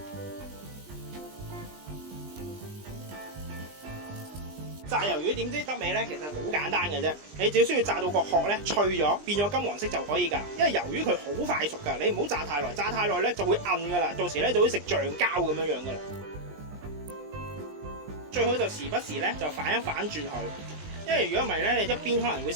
炸魷魚點知得味呢？其實好簡單嘅啫，你只需要炸到個殼咧脆咗，變咗金黃色就可以㗎。因為魷魚佢好快熟㗎，你唔好炸太耐，炸太耐咧就會韌㗎啦，到時咧就會食橡膠咁樣㗎啦。最好就時不時咧就反一反轉佢，因為如果唔係咧，你一邊可能會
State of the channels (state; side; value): late; left; 20 ms